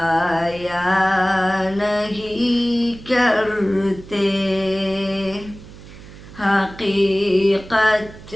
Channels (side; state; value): right; noise; hum, 18 dB below the sound